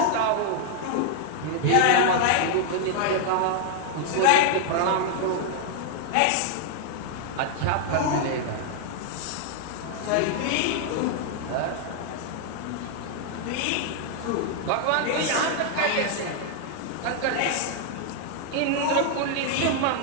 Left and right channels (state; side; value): different; both; correlation 0.00